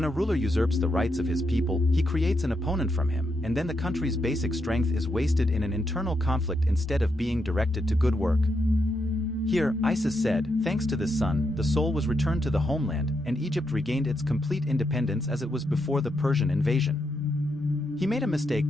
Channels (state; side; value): normal; both; correlation 0.82